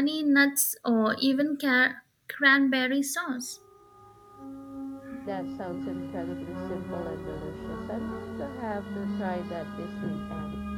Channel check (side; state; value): both; identical; correlation 1.00